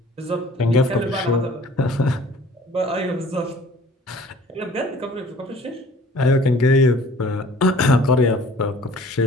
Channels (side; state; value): both; normal; correlation 0.51